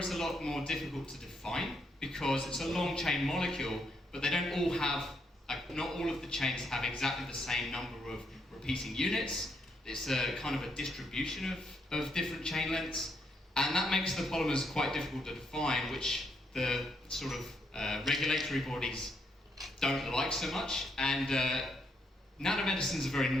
a lot more difficult to define because it's a long chain molecule, but they don't all have not all of the chains have exactly the same number of repeating units. It's a kind of a distribution of different chain lengths, and that makes the polymers quite difficult to define, which the sort of regulatory bodies don't like so much. And nanomedicine is a very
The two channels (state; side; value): normal; both; correlation 0.75